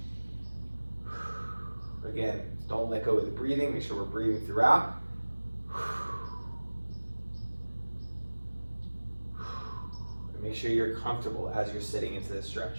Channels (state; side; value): inverted; both; correlation -1.00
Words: Again, don't let go of the breathing. Make sure we're breathing throughout. And make sure you're comfortable as you're sitting into this stretch.